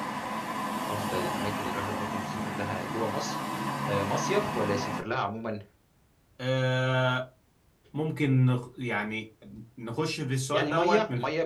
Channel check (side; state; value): both; identical; correlation 1.00